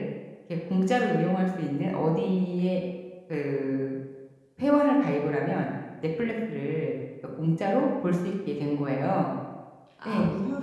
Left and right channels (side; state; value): both; identical; correlation 1.00